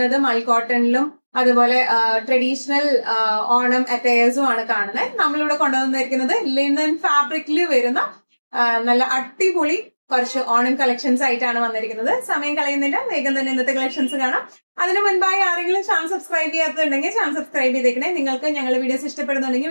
മൽ കോട്ടണിലും അതുപോലെ ട്രഡീഷണൽ ഓണം അറ്റയേഴ്സും ആണ് കാണുന്നത്. നമ്മളിവിടെ കൊണ്ടുവന്നിരിക്കുന്നത് ലിനൻ ഫാബ്രിക്കിൽ വരുന്ന നല്ല അടിപൊളി കുറച്ച് ഓണം കളക്ഷൻസ് ആയിട്ടാണ് വന്നിരിക്കുന്നത്. സമയം കളയുന്നില്ല, വേഗം തന്നെ ഇന്നത്തെ കളക്ഷൻസ് കാണാം. അതിന് മുൻപായി ആരെങ്കിലും ചാനൽ സബ്സ്ക്രൈബ് ചെയ്യാത്തുണ്ടെങ്കിൽ ചാനൽ സബ്സ്ക്രൈബ് ചെയ്തേക്കണേ. നിങ്ങൾക്ക് ഞങ്ങളുടെ വീഡിയോസ്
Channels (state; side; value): inverted; both; correlation -1.00